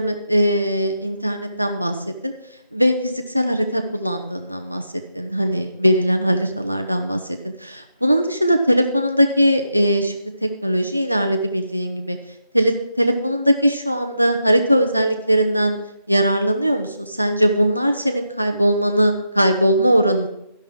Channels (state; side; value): inverted; both; correlation -0.84